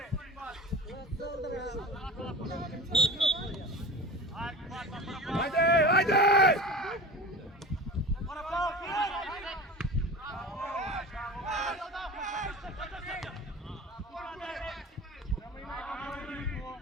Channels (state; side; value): normal; both; correlation 0.34